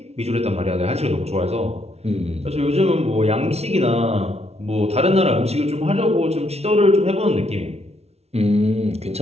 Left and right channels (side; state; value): left; late; 0.31 ms